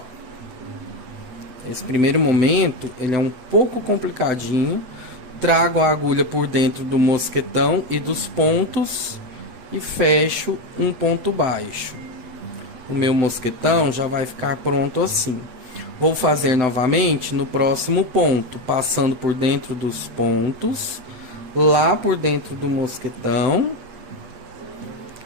esse primeiro momento, ele é um pouco complicadinho. Trago a agulha por dentro do mosquetão e dos pontos e fecho um ponto baixo. O meu mosquetão já vai ficar pronto assim. Vou fazer novamente no próximo ponto, passando por dentro dos pontos, lá por dentro do mosquetão.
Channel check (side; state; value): left; late; 7.9 ms